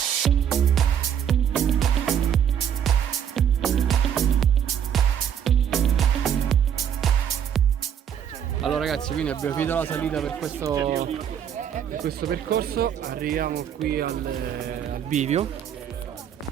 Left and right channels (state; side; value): quieter; left; 8.8 dB